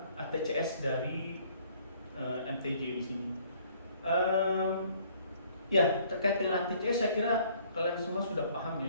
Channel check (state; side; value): inverted; both; correlation -0.60